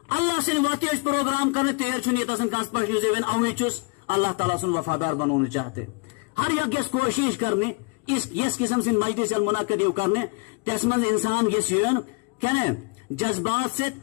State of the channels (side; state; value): right; quieter; 30.7 dB